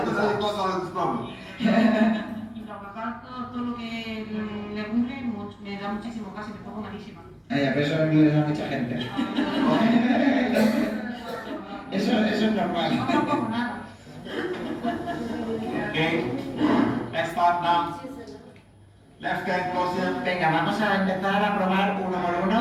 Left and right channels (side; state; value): both; identical; correlation 1.00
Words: allergy causes all of this problem. Y los gatos todo lo que legumbre me da muchísimo gas y me pongo malísima. Pero eso le da a mucha gente. Eso es normal. No como nada. Okay. Next part now. Left hand closer. Venga, vamos a empezar a probar uno por